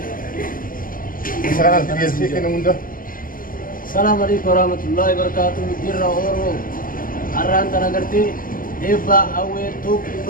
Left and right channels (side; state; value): right; late; 0.41 ms